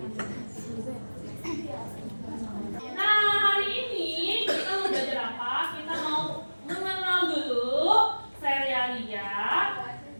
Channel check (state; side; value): inverted; both; correlation -1.00